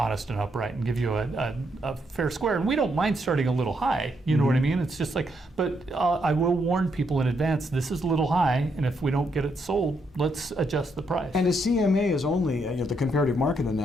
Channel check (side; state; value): both; normal; correlation 0.77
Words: and upright and give you a fair square. And we don't mind starting a little high, you know what I mean? It's just like, but I will warn people in advance, this is a little high, and if we don't get it sold, let's adjust the price. And a CMA is only, the comparative market